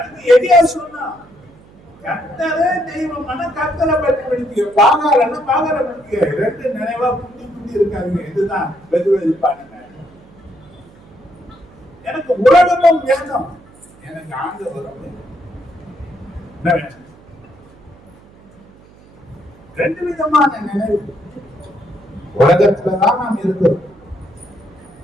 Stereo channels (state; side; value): noise; right; hum, 25 dB below the sound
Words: எடியா சொன்னா கர்த்தரே தெய்வமான கர்த்தரை பற்றி படிக்க பாகாரன்னா பாகார படிக்க ரெண்டு நினைவா குட்டி குட்டி இருக்காங்க. இதுதான் வெதுவெதுப்பானுங்க. எனக்கு உலகமும் வேணும், எனக்கு ஆண்டவரும் என்ன வேணும்? ரெண்டு விதமான நினைவு. உலகத்துலதான் நாம் இருக்கிறோம்.